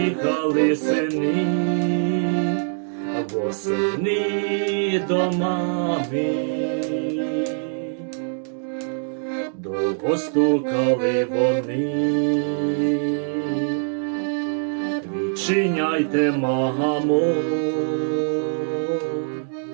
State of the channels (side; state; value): left; silent; digital silence